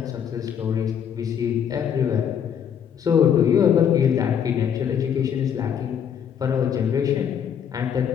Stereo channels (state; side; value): quieter; right; 8.3 dB